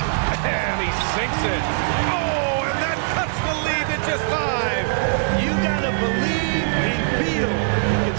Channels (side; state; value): left; silent; digital silence